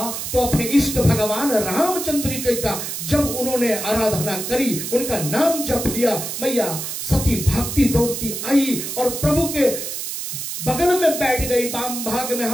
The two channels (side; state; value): right; noise; hiss, 5 dB below the sound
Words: तो अपने इष्ट भगवान रामचंद्र का जब उन्होंने आराधना करी, उनका नाम जप लिया, मैया सती भागती दौड़ती आई और प्रभु के बगल में बैठ गई, वाम भाग में